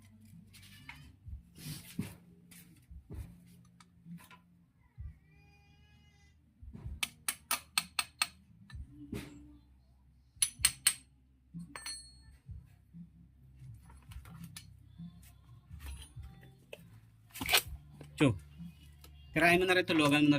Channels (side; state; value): both; identical; correlation 1.00